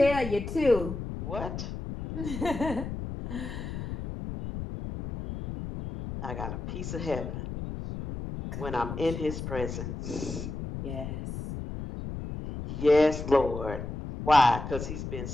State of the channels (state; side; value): noise; left; rumble, 7 dB below the sound